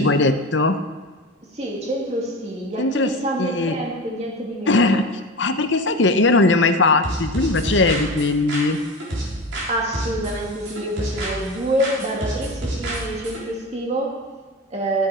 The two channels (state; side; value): normal; both; correlation 0.27